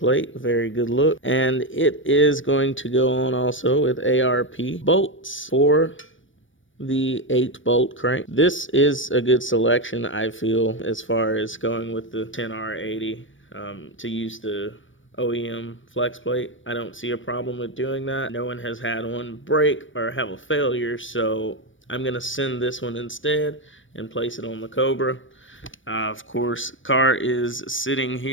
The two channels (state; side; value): late; right; 0.56 ms